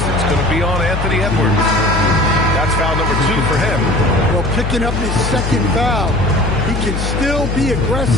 It's going to be on Anthony Edwards. That's foul number 2 for him. Well, picking up his second foul. He can still be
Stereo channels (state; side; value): noise; left; hum, 3 dB below the sound